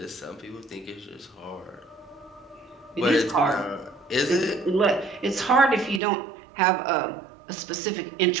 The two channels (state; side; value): drops out; left; at 6.0 s